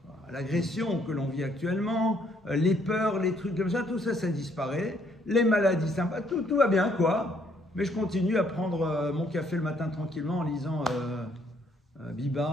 l'agression que l'on vit actuellement, les peurs, les trucs comme ça, tout ça, ça disparaît. Les maladies sympas, tout va bien, quoi. Mais je continue à prendre mon café le matin tranquillement en lisant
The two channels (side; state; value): both; normal; correlation 0.67